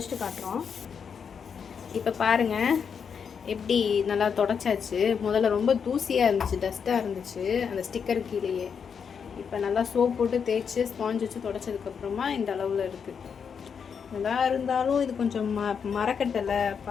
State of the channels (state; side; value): quieter; right; 6.7 dB